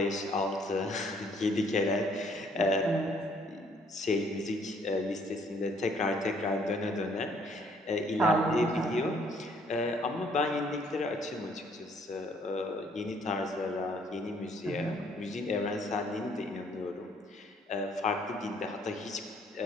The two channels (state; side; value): normal; both; correlation 0.64